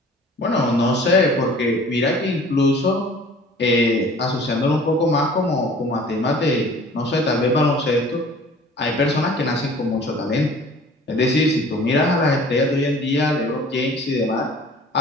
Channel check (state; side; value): normal; both; correlation 0.48